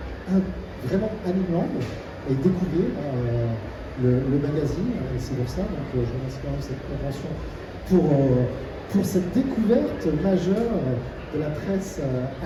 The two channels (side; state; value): both; identical; correlation 1.00